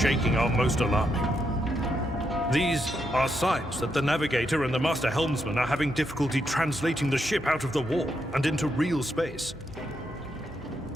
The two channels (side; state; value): both; normal; correlation 0.80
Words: are most alarming. These are signs that the navigator and the master helmsman are having difficulty translating the ship out of the warp and into real space.